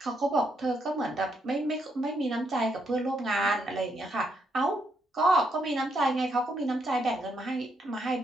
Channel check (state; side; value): normal; both; correlation 0.77